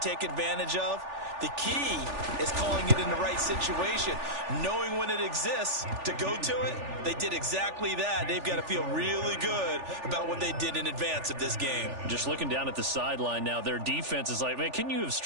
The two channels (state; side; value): late; left; 3.4 ms